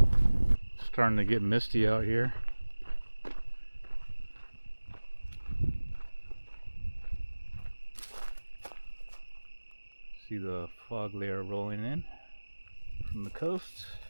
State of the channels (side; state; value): both; inverted; correlation -1.00